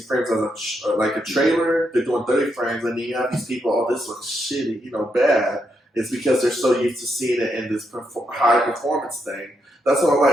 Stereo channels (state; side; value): normal; both; correlation 0.80